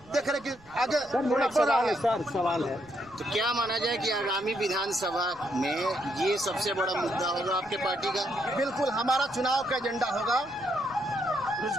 देख रहे कि आगे कोरोना बढ़ रहा है। सवाल है तो क्या माना जाए कि आगामी विधानसभा में ये सबसे बड़ा मुद्दा होगा आपके पार्टी का? बिल्कुल, हमारा चुनाव का एजेंडा होगा,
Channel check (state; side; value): noise; left; rumble, 27 dB below the sound